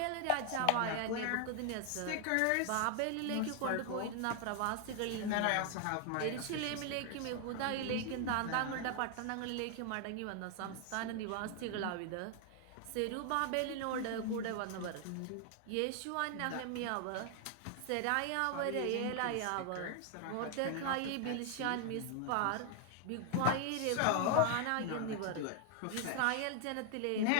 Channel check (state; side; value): different; both; correlation 0.00